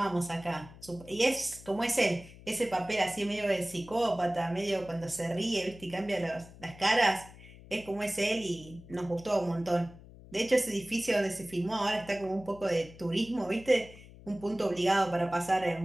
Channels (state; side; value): noise; left; hum, 19 dB below the sound